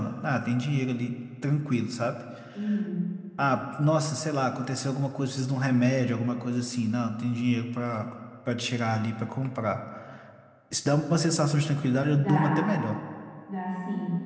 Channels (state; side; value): identical; both; correlation 1.00